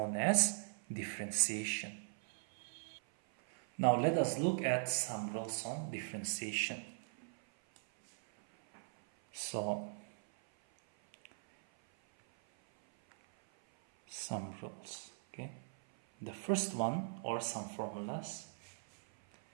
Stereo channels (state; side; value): silent; left; 51 dB below the other